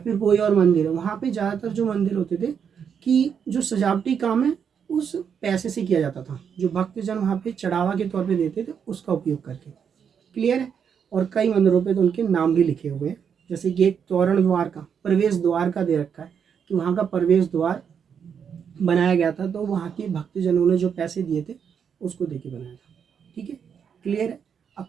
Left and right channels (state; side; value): quieter; left; 7.3 dB